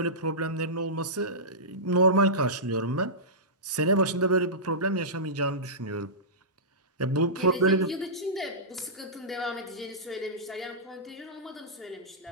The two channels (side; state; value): both; normal; correlation -0.17